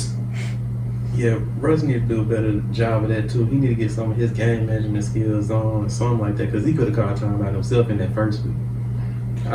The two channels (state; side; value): identical; both; correlation 1.00